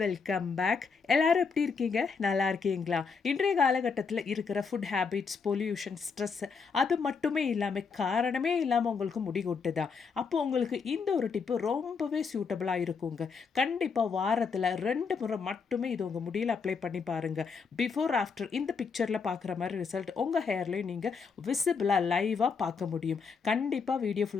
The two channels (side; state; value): right; quieter; 5.4 dB